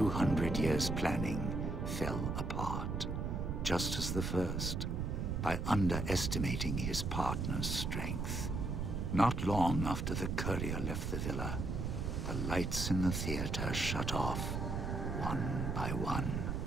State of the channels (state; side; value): noise; right; rumble, 1 dB below the sound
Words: years planning fell apart, just as the first, by underestimating his partner's strength. Not long after the courier left the villa, the lights in the theater shut off, one by one.